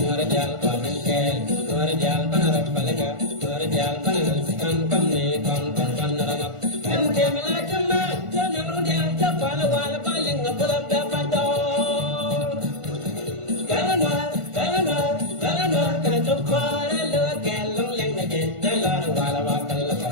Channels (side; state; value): left; late; 1.5 ms